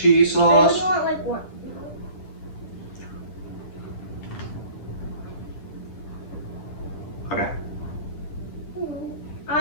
I sauce. only want like one. Okay, I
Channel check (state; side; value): late; right; 10 ms